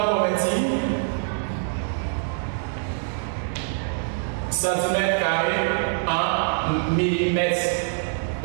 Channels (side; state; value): left; silent; 62 dB below the other